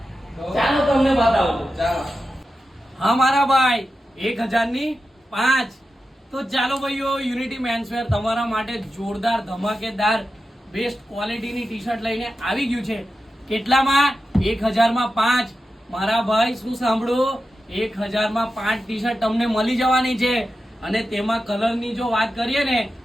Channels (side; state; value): both; normal; correlation 0.91